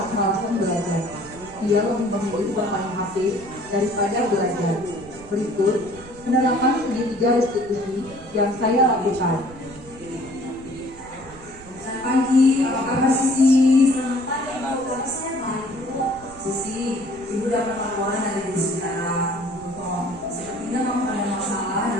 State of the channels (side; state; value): right; noise; rumble, 20 dB below the sound